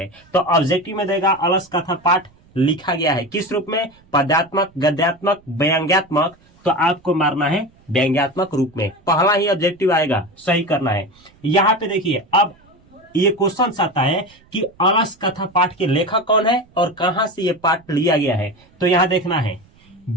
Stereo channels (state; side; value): noise; right; rumble, 30 dB below the sound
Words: तो ऑब्जेक्टिव में देगा अलस कथा पाठ लिखा गया है किस रूप में? पद्यात्मक, गद्यात्मक, व्यंग्यात्मक। तो आपको मारना है व्यंग्यात्मक रूप में। पहला ही ऑब्जेक्टिव आएगा, सही करना है। यहाँ पे देखिए अब ये क्वेश्चन आता है कि अलस कथा पाठ के लेखक कौन है और कहां से ये पाठ लिया गया है। तो यहाँ देखना है